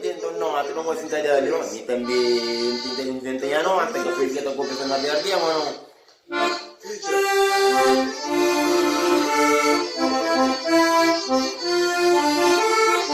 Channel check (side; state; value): both; identical; correlation 1.00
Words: não, tu não vai sentar ali, não, e também tem não, até que foi que eu tô começando a ver aqui, mano.